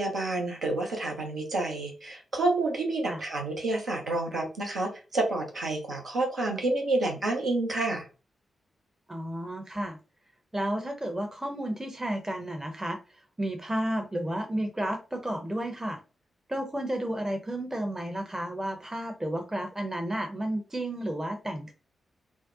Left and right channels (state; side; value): normal; both; correlation 0.82